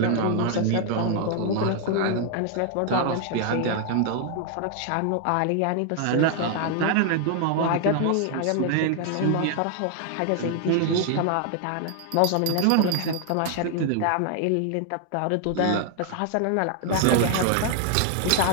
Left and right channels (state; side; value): different; both; correlation 0.00